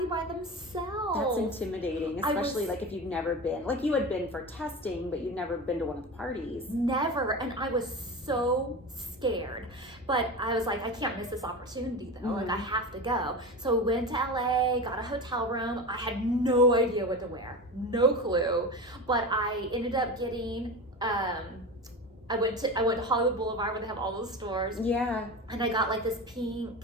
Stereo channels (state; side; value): normal; both; correlation 0.27